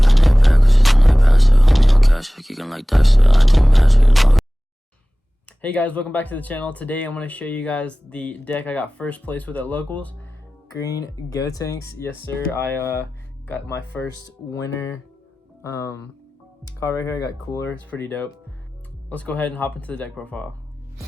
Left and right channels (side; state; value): both; normal; correlation 0.97